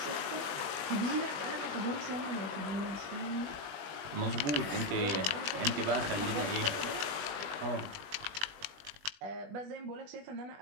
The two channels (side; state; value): left; late; 20 ms